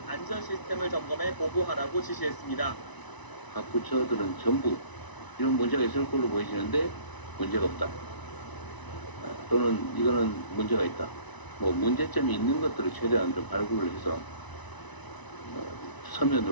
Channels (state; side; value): late; right; 1.0 ms